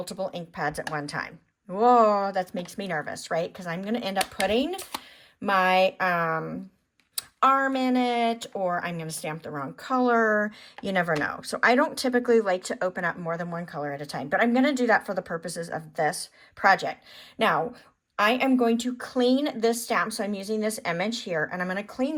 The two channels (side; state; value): both; identical; correlation 1.00